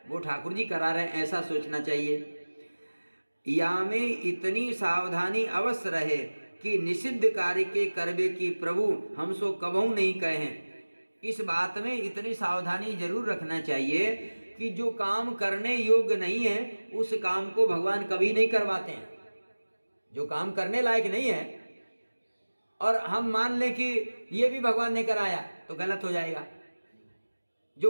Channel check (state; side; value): inverted; both; correlation -1.00